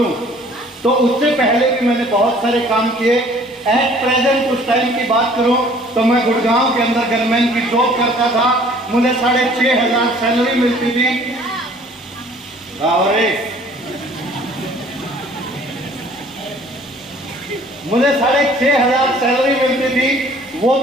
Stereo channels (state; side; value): normal; both; correlation 0.54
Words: तो उससे पहले भी मैंने बहुत सारे काम किए। एट प्रेजेंट उस टाइम की बात करूं तो मैं गुड़गांव के अंदर गनमैन की जॉब करता था। मुझे 6,500 सैलरी मिलती थी। मुझे 6,500 सैलरी मिलती थी, वो